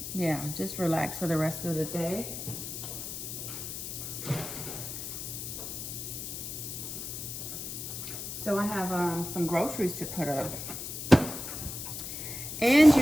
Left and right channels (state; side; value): noise; left; hiss, 7 dB below the sound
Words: yeah, just relax for the rest of the day. So I have some groceries to put up. And